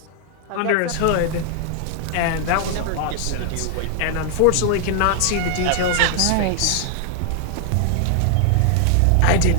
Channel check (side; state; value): both; different; correlation 0.00